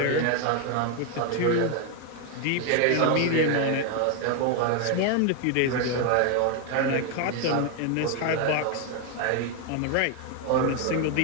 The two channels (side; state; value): both; different; correlation 0.01